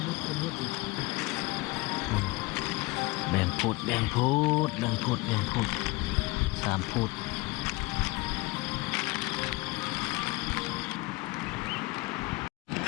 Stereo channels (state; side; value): quieter; right; 22.8 dB